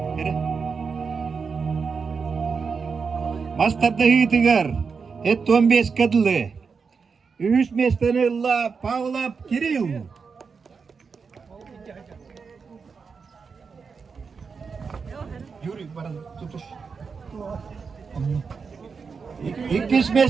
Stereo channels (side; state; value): left; quieter; 5.4 dB